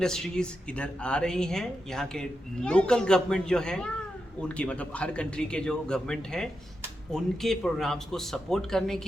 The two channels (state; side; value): normal; both; correlation 0.87